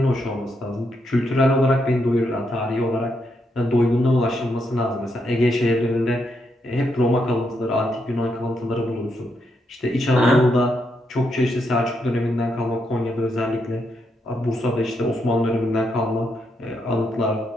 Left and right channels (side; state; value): both; normal; correlation 0.80